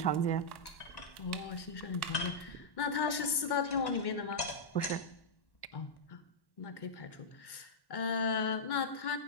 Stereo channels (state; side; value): late; right; 1.1 ms